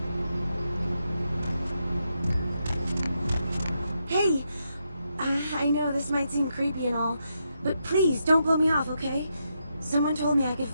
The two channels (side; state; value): both; inverted; correlation -0.82